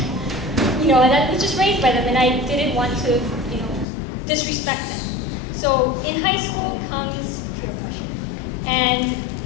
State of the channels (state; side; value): drops out; right; at 3.9 s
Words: And that was just raised by them, and I didn't want to, disrespect them. So in high school comes peer pressure. And